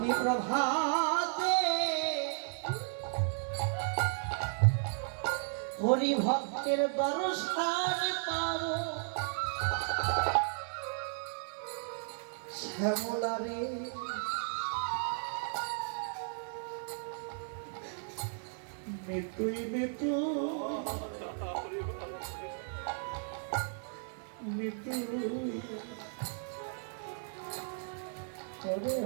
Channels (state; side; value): silent; left; digital silence